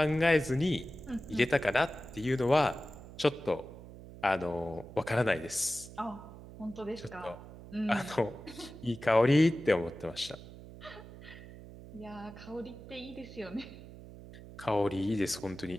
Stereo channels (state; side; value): noise; right; hum, 16 dB below the sound